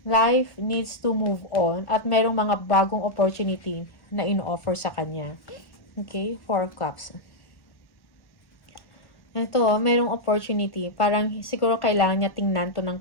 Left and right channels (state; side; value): late; right; 1.1 ms